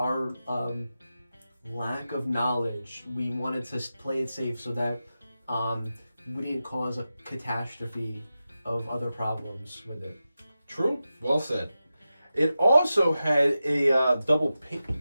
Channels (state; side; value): inverted; both; correlation -0.92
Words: lack of knowledge, we wanted to play it safe so that we didn't cause a catastrophe of other problems with it. True, well said. It also had a